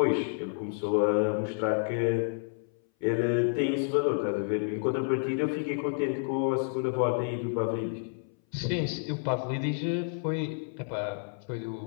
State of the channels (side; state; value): right; silent; 58 dB below the other